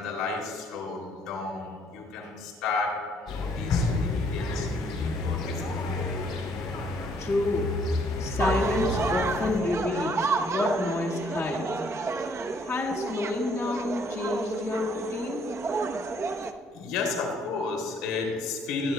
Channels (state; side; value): normal; both; correlation 0.64